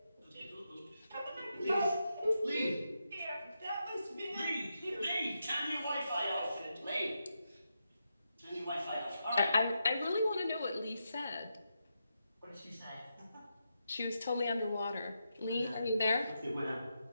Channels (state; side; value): inverted; both; correlation -0.85